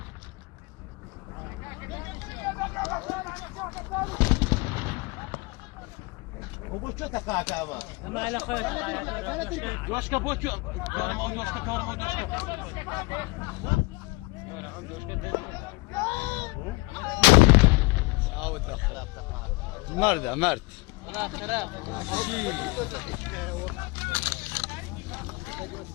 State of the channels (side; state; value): right; quieter; 25.8 dB